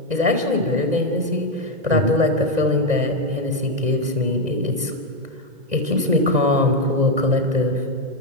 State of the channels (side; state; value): left; late; 1.9 ms